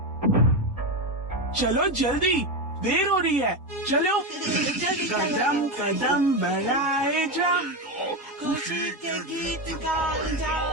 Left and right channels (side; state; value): both; normal; correlation 0.13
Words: चलो जल्दी, देर हो रही है। चलो। कदम कदम बढ़ाए जा, खुशी के गीत गाए जा।